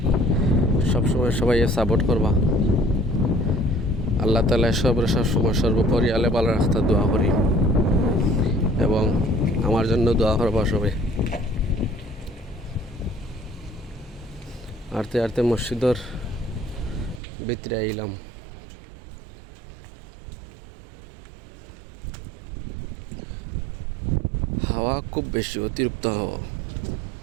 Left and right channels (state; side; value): drops out; left; at 17.2 s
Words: সবসময় সবাই সাপোর্ট করবা। আল্লাহ তাআলা সবসময় সর্বোপরি আলে ভালো রাস্তা দোয়া করি এবং আমার জন্য দোয়া করবা সবাই। আরতে আরতে মসজিদের ভিতরে আইলাম। হাওয়া খুব বেশি, অতিরিক্ত হাওয়া।